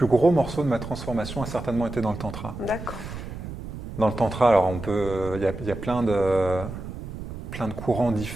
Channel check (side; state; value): right; noise; rumble, 10 dB below the sound